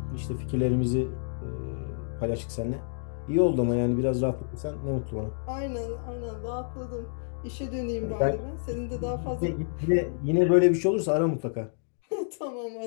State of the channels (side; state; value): right; silent; digital silence